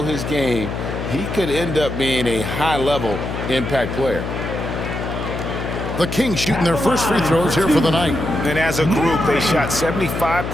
his game, he could end up being a high-level impact player. The Kings shooting their first free throws here for the night. And as a group, they shot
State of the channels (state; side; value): noise; left; hum, 5 dB below the sound